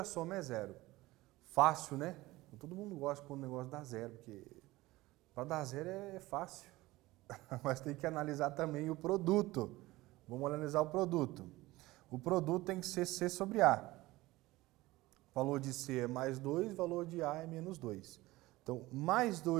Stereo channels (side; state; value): left; quieter; 19.1 dB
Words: soma é zero. Fácil, né? Todo mundo gosta quando o negócio dá zero, porque para dar zero é fácil. Mas tem que analisar também o produto. Vamos analisar o produto. O produto tem que ser C sobre A. O valor de C é mais 2, o valor de A é menos 2. Então, mais